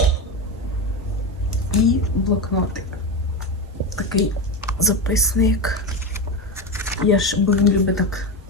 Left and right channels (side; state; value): both; normal; correlation 0.17